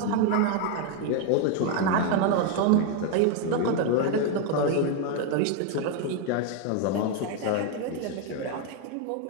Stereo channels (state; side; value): different; both; correlation 0.01